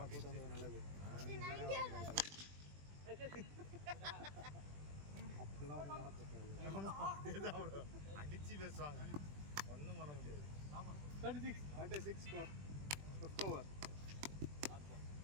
கூட்டு வந்தது நல்லது. அப்படிலாம் ஒன்றும் நடக்க அடிச்சு பேசுவாங்க. ஒன்றும் பண்ண முடியாது. 36 ஸ்கோர் 5th ஓவர்.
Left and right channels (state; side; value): late; left; 20 ms